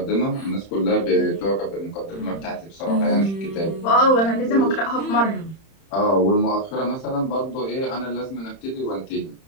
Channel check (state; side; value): late; right; 31 ms